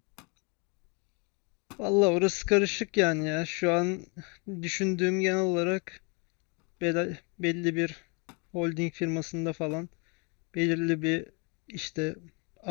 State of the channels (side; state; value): right; quieter; 31.7 dB